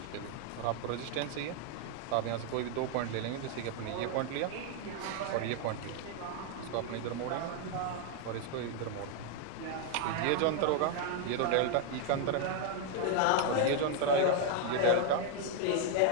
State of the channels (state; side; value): different; both; correlation 0.00